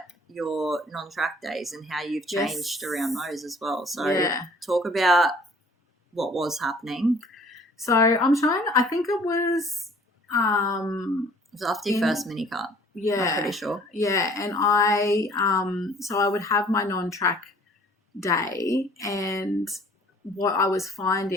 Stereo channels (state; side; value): normal; both; correlation 0.54